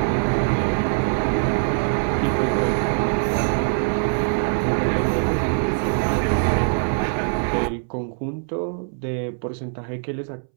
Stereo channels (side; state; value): left; silent; 64 dB below the other